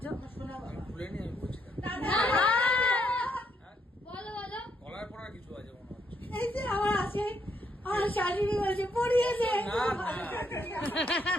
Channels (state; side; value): normal; both; correlation 0.74